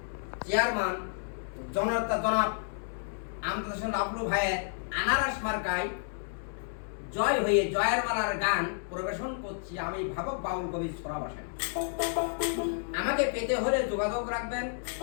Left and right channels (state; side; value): silent; right; digital silence